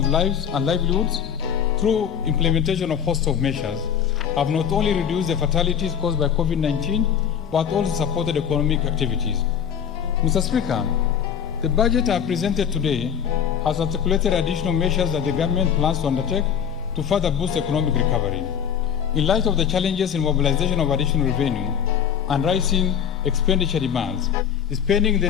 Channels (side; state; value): right; quieter; 8.4 dB